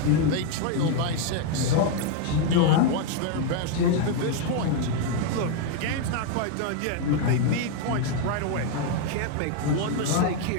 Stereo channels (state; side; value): different; both; correlation 0.01